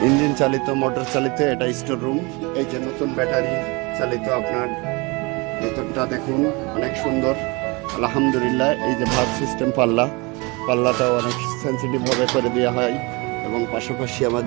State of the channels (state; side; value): quieter; left; 27.0 dB